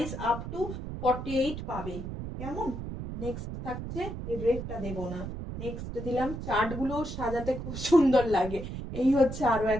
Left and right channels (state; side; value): noise; right; rumble, 7 dB below the sound